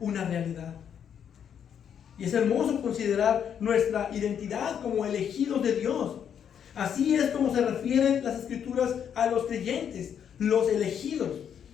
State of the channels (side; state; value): right; quieter; 8.4 dB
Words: una realidad. Y es hermoso considerar nuestra identidad como elegidos de Dios. Así es como se refieren las Escrituras a los creyentes, los elegidos.